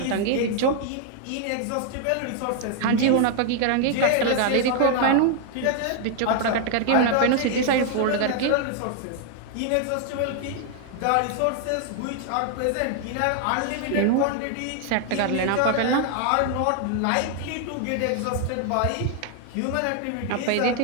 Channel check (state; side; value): different; both; correlation 0.00